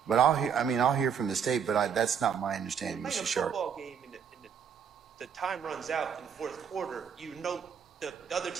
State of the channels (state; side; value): quieter; left; 7.5 dB